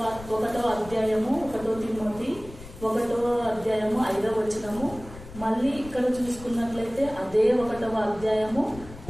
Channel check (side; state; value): left; noise; rumble, 16 dB below the sound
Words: 1వ అధ్యాయము 1 తిమోతి 1వ అధ్యాయము 5వ వచనము. మళ్ళీ ఇక్కడ చూసుకున్నట్లయితే అదే 1వ అధ్యాయము